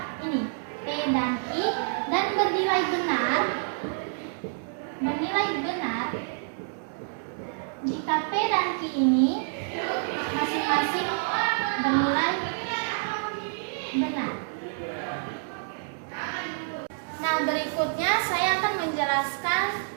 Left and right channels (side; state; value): left; silent; digital silence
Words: ini P dan Q dan bernilai benar jika P dan Q ini masing-masing bernilai benar. Nah, berikutnya saya akan menjelaskan